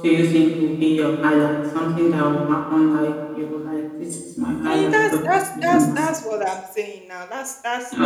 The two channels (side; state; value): both; identical; correlation 1.00